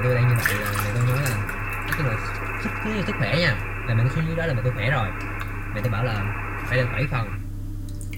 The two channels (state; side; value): identical; both; correlation 1.00